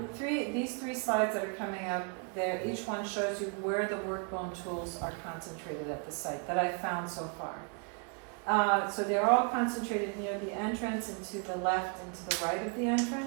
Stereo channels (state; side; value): quieter; left; 37.9 dB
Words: these three slides that are coming up, there, each one shows you where the workbone tools are concentrated at the site that I've found so far. So they're all concentrated near the entrance and to the left and to the right of the